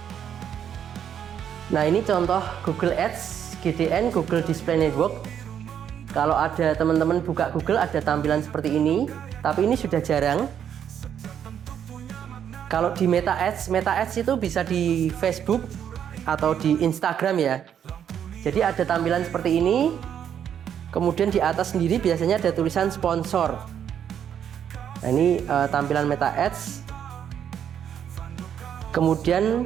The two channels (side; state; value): left; quieter; 8.9 dB